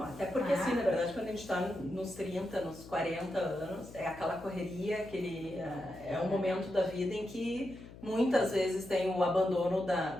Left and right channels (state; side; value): noise; left; hum, 17 dB below the sound